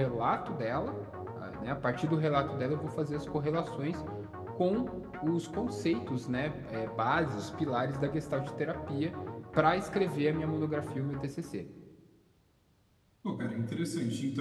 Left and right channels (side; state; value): both; identical; correlation 1.00